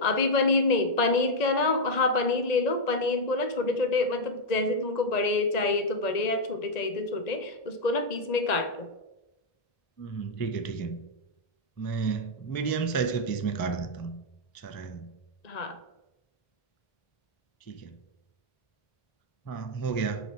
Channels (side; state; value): right; late; 1.9 ms